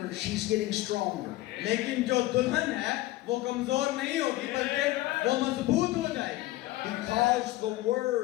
she's getting stronger. लेकिन जो दुल्हन है वो कमजोर नहीं होगी बल्कि वो मजबूत हो जाएगी। Because the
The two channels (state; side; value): quieter; right; 17.3 dB